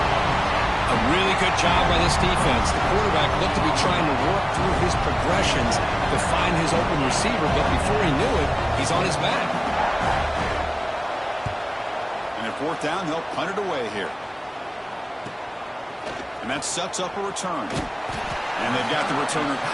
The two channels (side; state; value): both; identical; correlation 1.00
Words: A really good job by this defense. The quarterback looked to be trying to work through his progressions to find his open receiver, but before he knew it, he's on his back. And at fourth down, they'll punt it away here. And that sets up a return. And they've got the returner